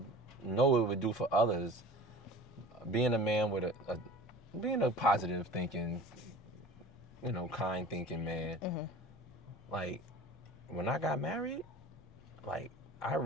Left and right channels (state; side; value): normal; both; correlation 0.40